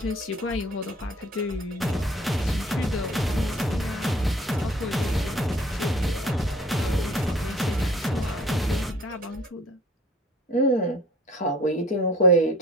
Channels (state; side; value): normal; both; correlation 0.50